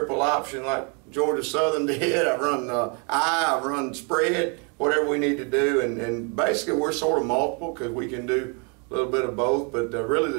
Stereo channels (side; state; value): left; quieter; 35.5 dB